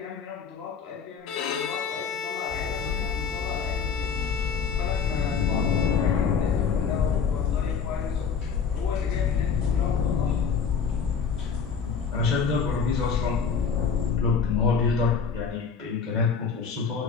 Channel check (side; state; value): right; quieter; 6.1 dB